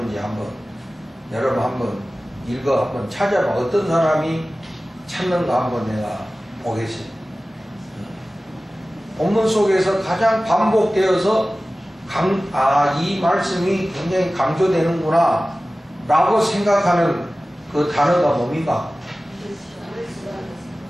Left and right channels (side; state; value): both; normal; correlation 0.96